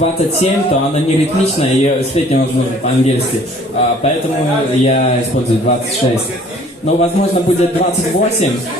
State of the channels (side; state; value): both; normal; correlation 0.54